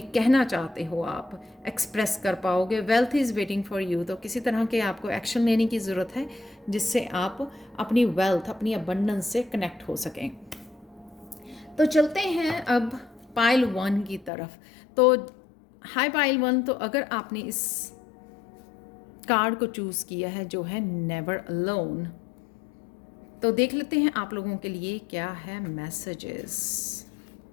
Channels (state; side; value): drops out; right; at 14.3 s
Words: कहना चाहते हो आप एक्सप्रेस कर पाओगे। Wealth is waiting for you, तो किसी तरह के आपको एक्शन लेने की ज़रूरत है जिससे आप अपनी वेल्थ, अपनी अबंडेंस से कनेक्ट हो सकें। तो चलते हैं अब पाइल 1 की तरफ। तो हाय पाइल 1, तो अगर आपने इस कार्ड को चूज़ किया है जो है नेवर अलोन, तो देख लेते हैं आप लोगों के लिए क्या है मैसेजेस।